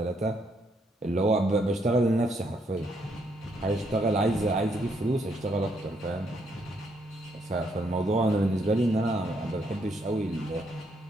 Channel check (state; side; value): normal; both; correlation 0.74